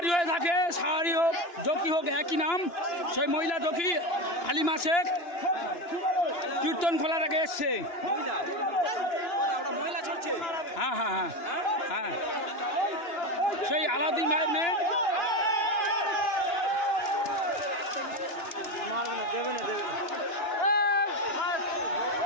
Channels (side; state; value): right; late; 2.9 ms